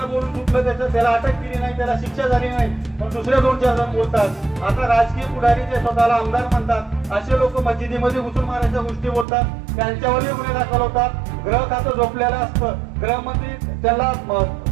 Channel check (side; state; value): left; drops out; at 9.2 s